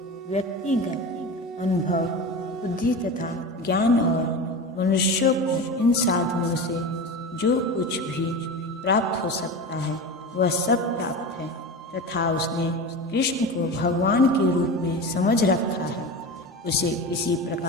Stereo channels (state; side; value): normal; both; correlation 0.28